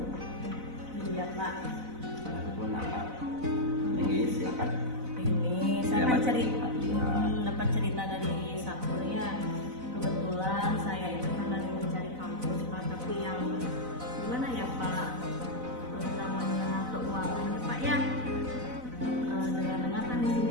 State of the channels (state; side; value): late; left; 4.0 ms